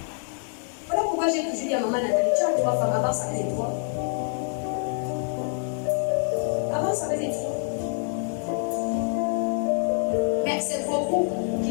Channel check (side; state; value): right; silent; 60 dB below the other